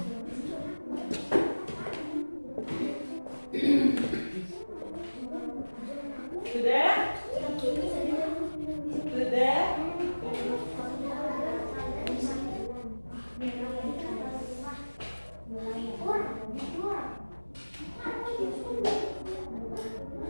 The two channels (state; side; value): inverted; both; correlation -1.00